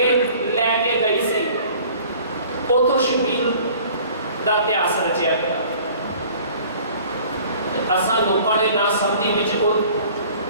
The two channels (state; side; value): inverted; both; correlation -0.50